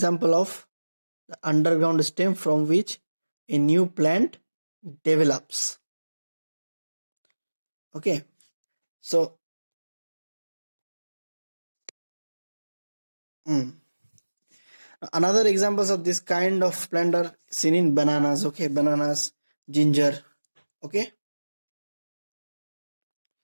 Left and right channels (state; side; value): inverted; both; correlation -1.00